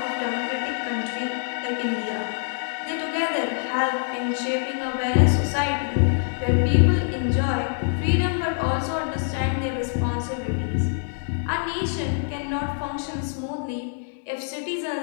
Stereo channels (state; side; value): silent; right; digital silence